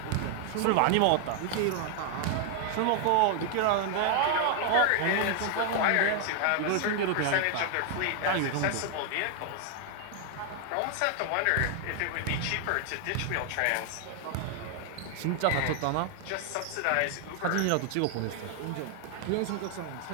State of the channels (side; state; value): both; different; correlation 0.00